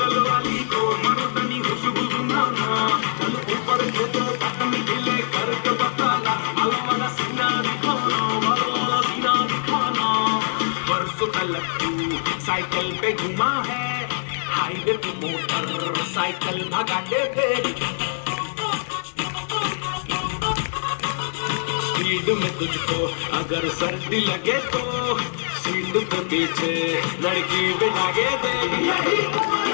वाली को मर्दानी खुशबू सुनाना। चल ऊपर को तो तकनी ढीले करके बताना, वाला सीना दिखाना, वाला सीना दिखाना। परसों तलक तू साइकिल पे घुमा है, हाईवे पे मोटर साइकिल भगाते थे, स्पीड में तुझको अगर सर्दी लगे तो सीट पे पीछे लड़की बिठाके दे। यही उम्र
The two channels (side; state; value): right; silent; 63 dB below the other